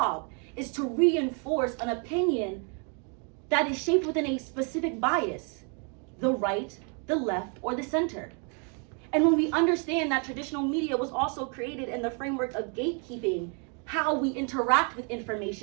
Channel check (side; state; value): left; quieter; 38.4 dB